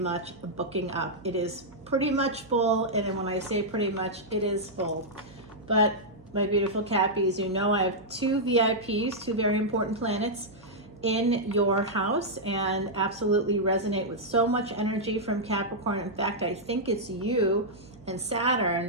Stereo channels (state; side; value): noise; right; hum, 24 dB below the sound